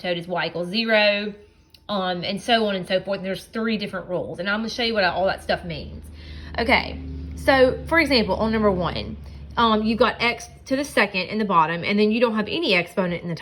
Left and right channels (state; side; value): identical; both; correlation 1.00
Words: is y equals 0, and so on and so forth. And there's 3 different rules, and I'm going to show you what all that stuff means. Okay, so for example, on number 1, you've got x to the second in the bottom, and then you don't have any exponent in the